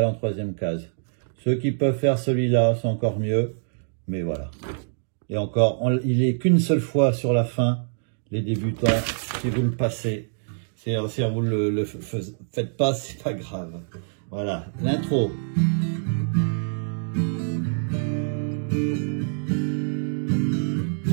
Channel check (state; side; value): silent; left; digital silence